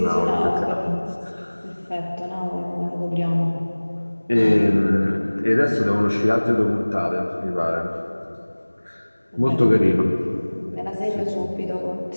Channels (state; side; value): inverted; both; correlation -1.00